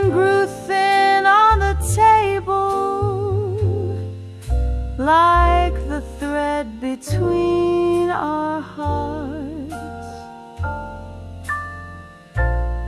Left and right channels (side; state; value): both; identical; correlation 1.00